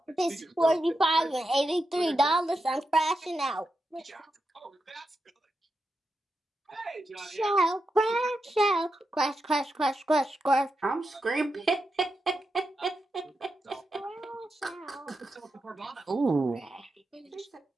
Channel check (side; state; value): both; normal; correlation 0.87